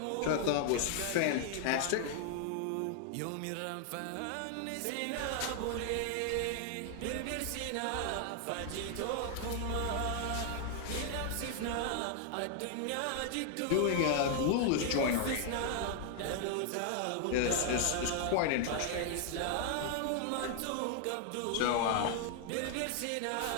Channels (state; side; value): different; both; correlation 0.00